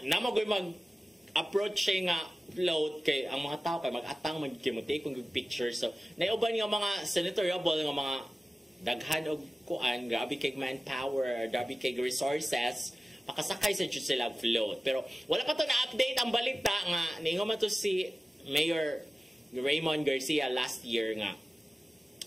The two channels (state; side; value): normal; both; correlation 0.96